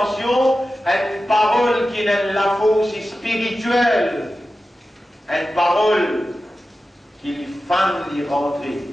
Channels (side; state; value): both; normal; correlation 0.93